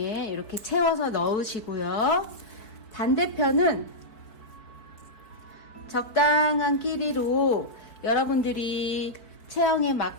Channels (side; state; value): right; late; 4.6 ms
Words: 이렇게 채워서 넣으시고요. 반대편은 적당한 길이로 여러분들이 체형에